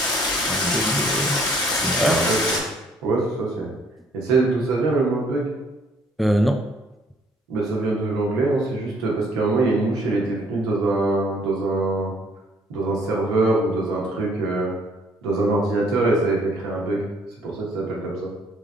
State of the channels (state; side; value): normal; both; correlation 0.63